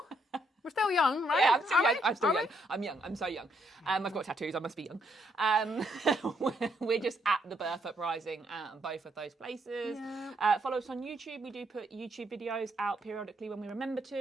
We're still young, right? Yeah, I'm still young. I'm still Are young. I'm young. I'm so young. I've got tattoos. I must be young. We're just at the Birth Uprising at both of those places. Yeah. Follow us on YouTube. We do put YouTube videos out periodically when we remember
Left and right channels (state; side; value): normal; both; correlation 0.74